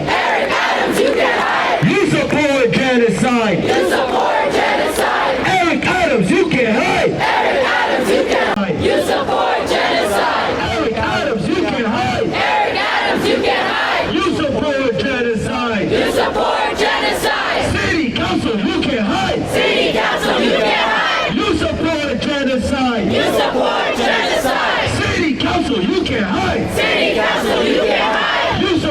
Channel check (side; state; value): both; identical; correlation 1.00